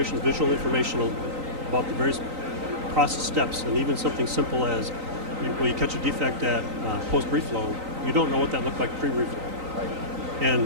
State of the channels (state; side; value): late; left; 3.9 ms